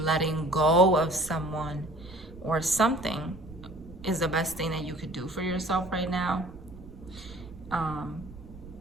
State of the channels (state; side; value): noise; right; rumble, 18 dB below the sound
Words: letting go of someone or something is the best thing that you could do for yourself right now.